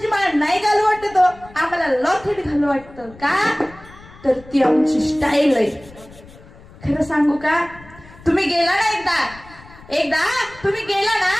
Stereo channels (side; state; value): left; noise; rumble, 22 dB below the sound